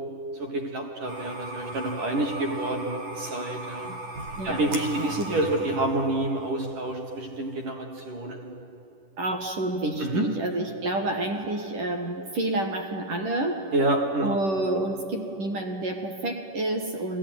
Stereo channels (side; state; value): left; late; 10 ms